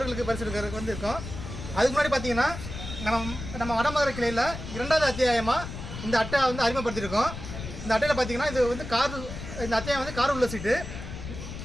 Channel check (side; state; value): left; noise; rumble, 9 dB below the sound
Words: பரிசு இருக்கிறதுக்கு வந்து இருக்கும். அதுக்கு முன்னாடி பார்த்தீங்கன்னா நம்ம வடமதுரை கிளையில் 2வது அத்தியாயமாக இந்த அட்டை வந்து அறிமுகப்படுத்தியிருக்கோம். இந்த அட்டையில் பார்த்தீங்கன்னா இது வந்து இந்த அத்தியாயம் வந்து கார் உள்ள சீட்டு.